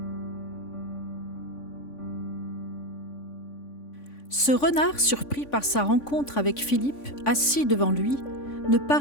Ce renard, surpris par sa rencontre avec Philippe, assis devant lui, ne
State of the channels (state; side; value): late; right; 3.5 ms